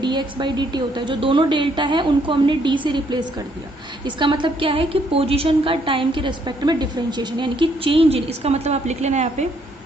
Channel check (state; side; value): normal; both; correlation 0.69